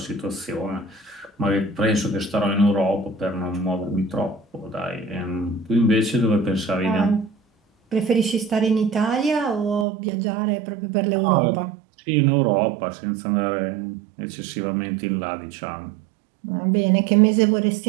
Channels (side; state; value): left; drops out; at 9.9 s